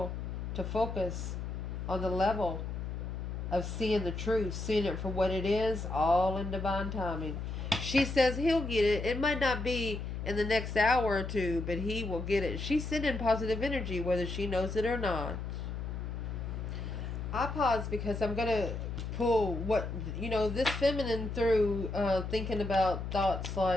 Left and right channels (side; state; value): left; noise; hum, 5 dB below the sound